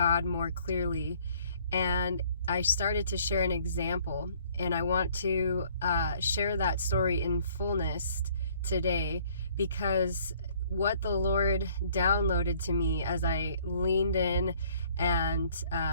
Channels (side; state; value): both; inverted; correlation -0.59